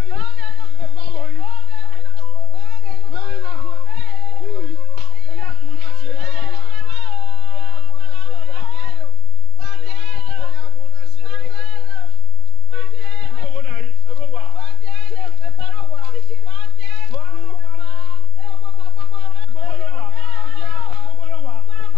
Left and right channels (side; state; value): both; normal; correlation 0.35